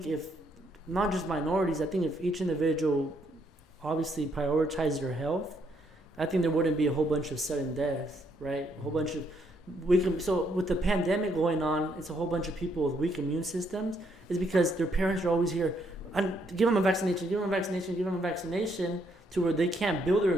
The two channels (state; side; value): normal; both; correlation 0.73